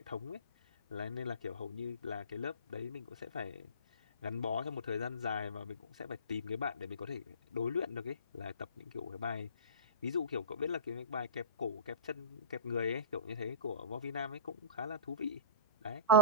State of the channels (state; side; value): inverted; both; correlation -0.31